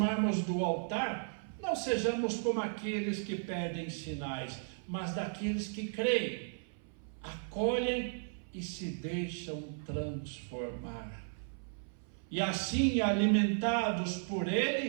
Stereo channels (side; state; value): left; silent; 54 dB below the other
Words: do altar, não sejamos como aqueles que pedem sinais, mas daqueles que creem, acolhem e se deixam transformar. E assim, alimentados por